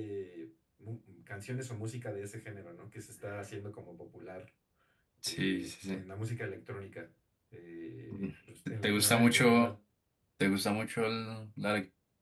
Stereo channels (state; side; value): identical; both; correlation 1.00